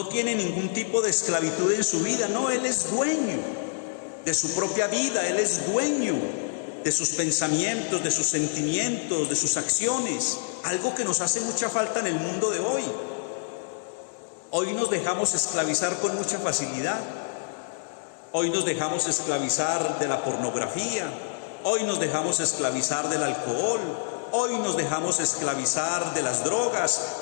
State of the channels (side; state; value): right; silent; digital silence